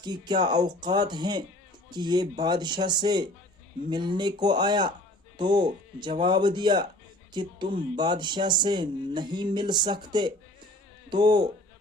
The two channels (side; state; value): both; normal; correlation 0.48